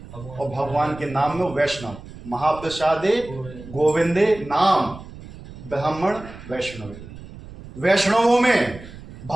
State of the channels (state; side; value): noise; right; rumble, 16 dB below the sound